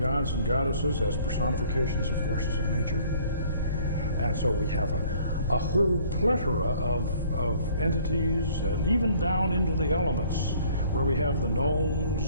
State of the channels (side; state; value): both; inverted; correlation -0.57